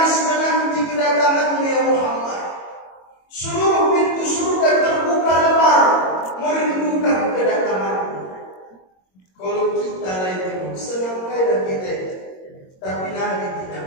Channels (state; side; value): late; right; 22 ms